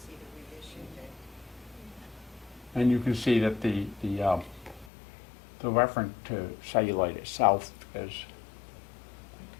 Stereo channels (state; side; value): drops out; right; at 4.9 s